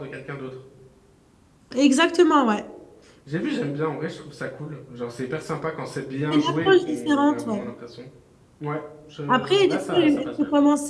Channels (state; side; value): identical; both; correlation 1.00